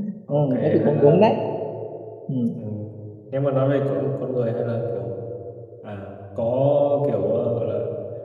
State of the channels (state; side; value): identical; both; correlation 1.00